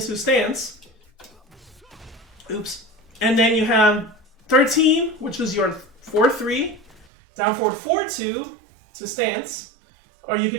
stance. Oops. And then you have 13, which is your 4, 3. Down forward 4, 2 to stance. Or you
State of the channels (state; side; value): drops out; left; at 7.1 s